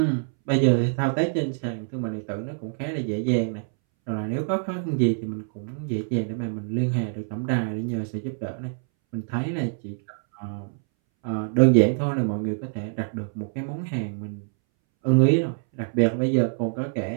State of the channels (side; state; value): left; silent; 61 dB below the other